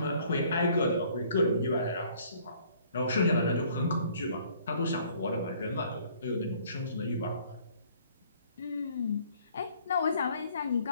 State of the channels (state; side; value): inverted; both; correlation -0.59